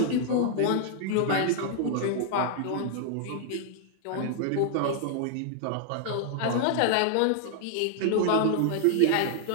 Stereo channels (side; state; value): both; different; correlation 0.00